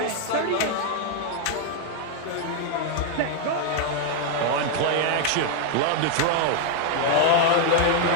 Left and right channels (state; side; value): different; both; correlation 0.00